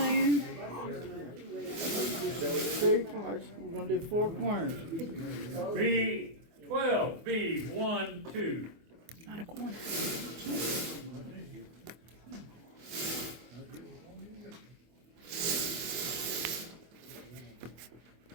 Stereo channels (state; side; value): late; left; 24 ms